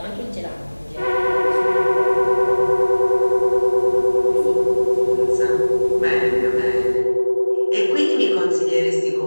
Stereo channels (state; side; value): inverted; both; correlation -1.00